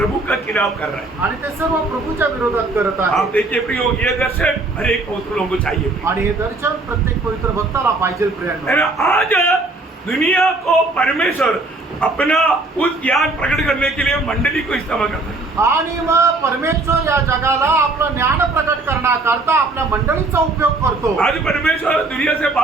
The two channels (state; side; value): quieter; left; 3.2 dB